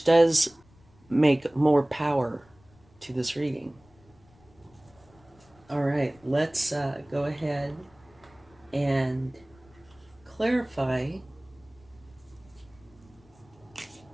does make more power to this reading. All right, let's go ahead and clarify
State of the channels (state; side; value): noise; left; rumble, 28 dB below the sound